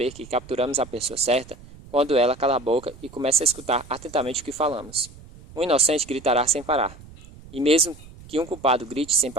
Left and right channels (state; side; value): noise; right; rumble, 20 dB below the sound